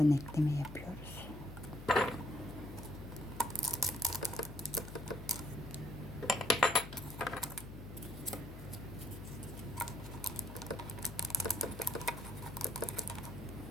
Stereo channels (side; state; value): left; noise; hum, 13 dB below the sound